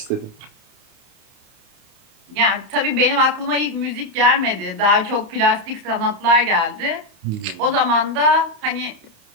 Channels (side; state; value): left; late; 30 ms